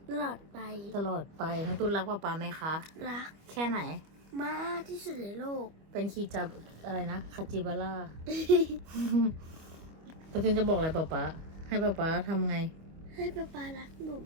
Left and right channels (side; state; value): left; late; 25 ms